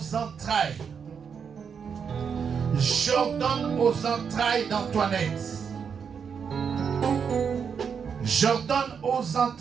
entrailles d'Antoinette. J'ordonne aux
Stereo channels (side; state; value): left; quieter; 6.7 dB